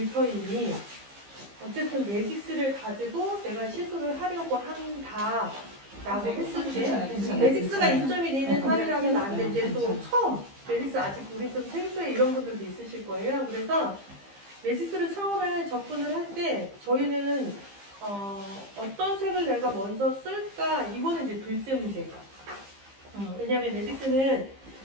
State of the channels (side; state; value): left; late; 15 ms